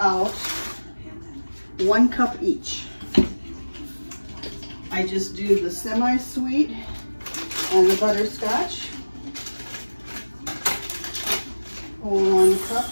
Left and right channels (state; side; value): inverted; both; correlation -1.00